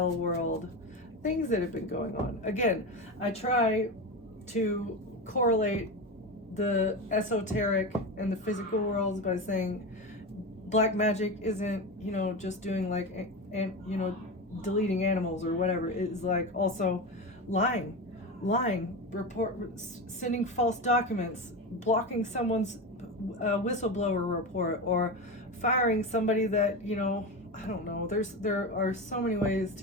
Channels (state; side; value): normal; both; correlation 0.21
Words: world things that have been going on. Again, I try to correlate the esoteric and the physical worlds by saying black magic isn't, just doing like, deleting animals or whatever. It is like also lying, sending false documents, blocking someone's whistleblower report, or firing somebody that, I don't know. There are so many ways